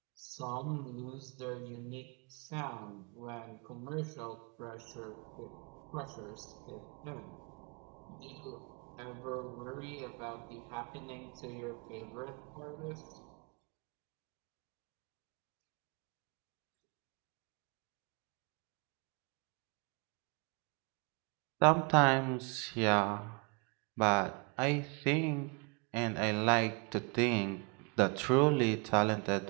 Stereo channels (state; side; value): quieter; left; 32.5 dB